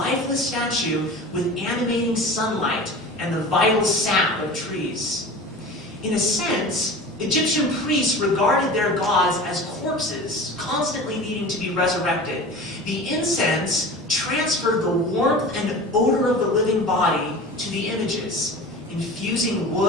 statue with animating sunlight and the vital sap of trees. In a sense, Egyptian priests regarded their gods as corpses, constantly needing to be resurrected. The incense transferred the warmth and odor of the living body to the images, infusing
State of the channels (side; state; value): both; normal; correlation 0.36